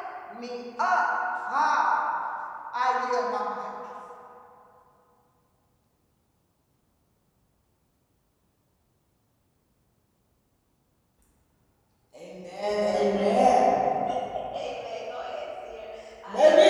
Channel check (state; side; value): identical; both; correlation 1.00